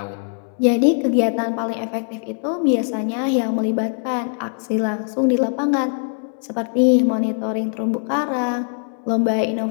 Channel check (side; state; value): right; silent; 62 dB below the other